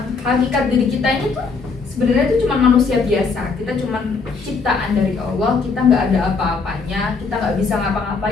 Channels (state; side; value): quieter; right; 4.6 dB